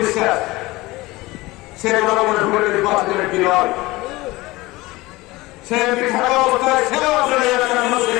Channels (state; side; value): quieter; right; 20.5 dB